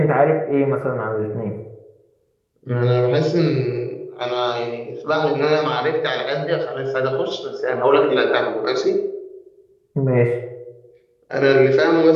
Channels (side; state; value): both; identical; correlation 1.00